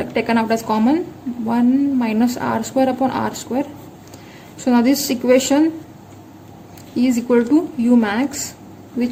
taken out as common, 1 minus r square upon r square. So now this equation is equal to u max,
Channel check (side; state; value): both; identical; correlation 1.00